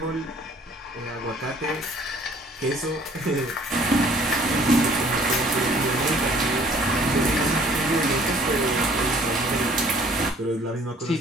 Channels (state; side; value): normal; both; correlation 0.57